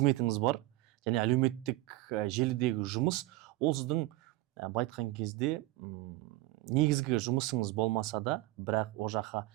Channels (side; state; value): left; quieter; 18.5 dB